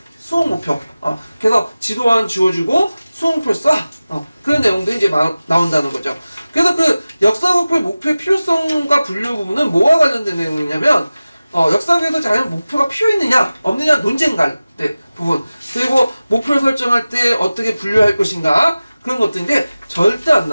수업 목표. 그래서 지도안 지워주고 수업 목표를 써. 그런 내용도 이제 나온다는 거죠. 그래서 그 역사교육의 목표의 필요성과 분류 부분은 뭐와 관련된 내용이냐면 역사교육에서 과연 목표가 필요했느냐 없느냐 논쟁갈 때 부분 그리고 목표를 설정할 때 어떻게 분류할 것인가 그런 것들인데 절대 안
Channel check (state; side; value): inverted; both; correlation -0.96